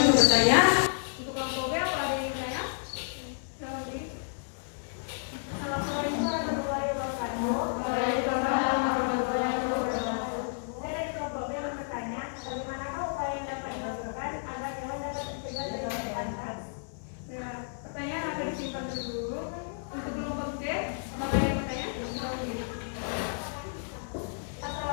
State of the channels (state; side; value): silent; right; 55 dB below the other